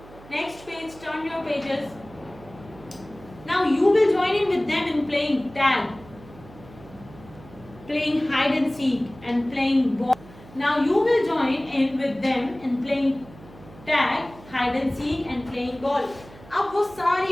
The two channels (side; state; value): right; noise; hum, 20 dB below the sound